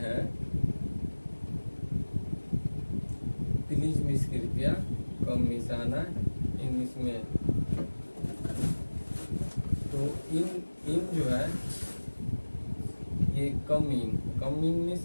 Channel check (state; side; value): inverted; both; correlation -1.00